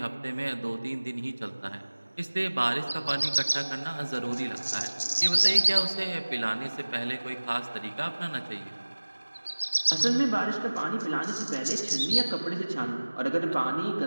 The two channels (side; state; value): both; inverted; correlation -1.00